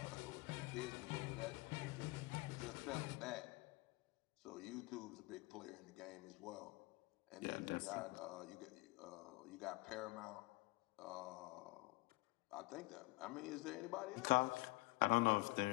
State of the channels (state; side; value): quieter; right; 23.6 dB